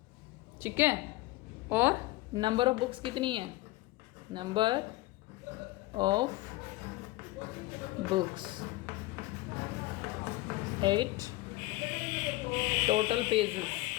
ठीक है, और नंबर ऑफ बुक्स कितनी है, number of books 8, total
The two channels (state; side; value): quieter; right; 19.3 dB